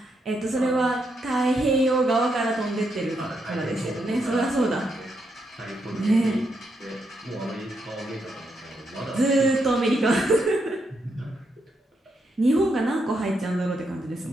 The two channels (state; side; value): normal; both; correlation 0.80